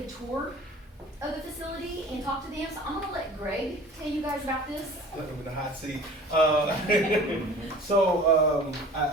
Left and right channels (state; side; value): normal; both; correlation 0.44